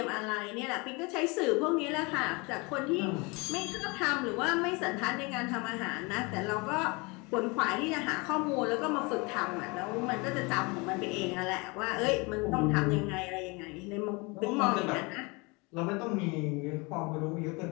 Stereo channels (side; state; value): right; quieter; 27.6 dB